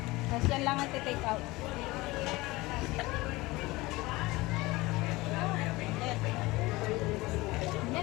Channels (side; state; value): right; quieter; 21.0 dB